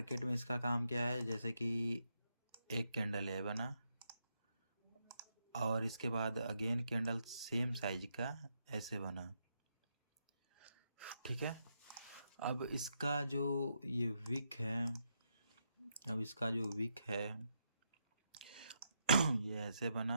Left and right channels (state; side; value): inverted; both; correlation -0.81